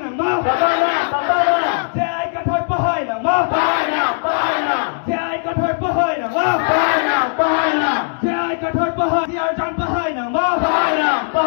mơ. Thế ai có thời bơ hơi là mơ. Thế ai có thời bơ hơi là mơ. Thế ai có thời bơ hơi. ECR đang bơ hơi là mơ.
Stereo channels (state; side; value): silent; right; digital silence